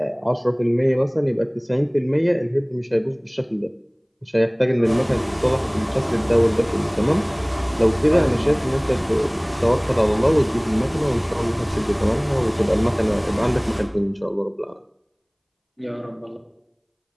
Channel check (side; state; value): both; identical; correlation 1.00